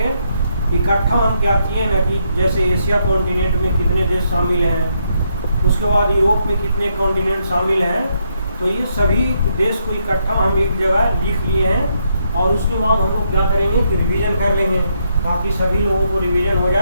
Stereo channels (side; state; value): both; inverted; correlation -0.77